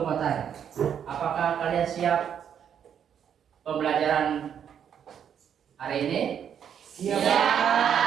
mau tanya, apakah kalian siap pembelajaran hari ini? Siap.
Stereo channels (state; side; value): quieter; left; 8.5 dB